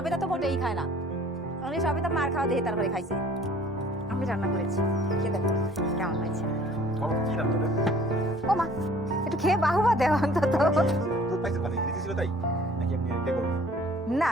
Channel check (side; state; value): both; normal; correlation 0.53